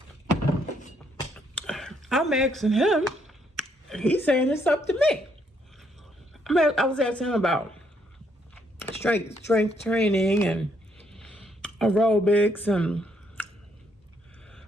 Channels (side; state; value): both; normal; correlation 0.72